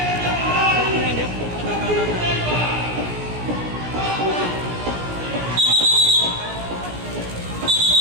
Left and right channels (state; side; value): late; left; 17 ms